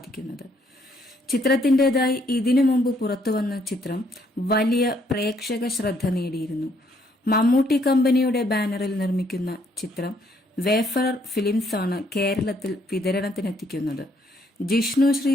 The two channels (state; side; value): normal; both; correlation 0.69